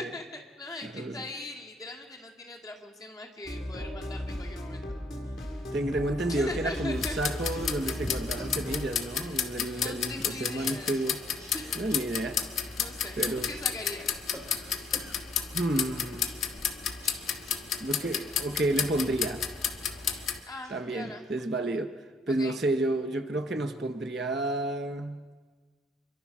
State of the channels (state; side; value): normal; both; correlation 0.64